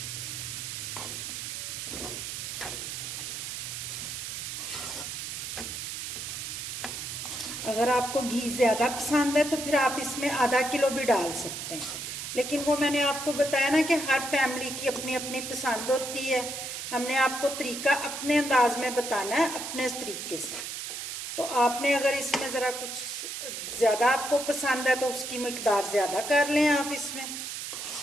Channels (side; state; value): right; noise; hiss, 6 dB below the sound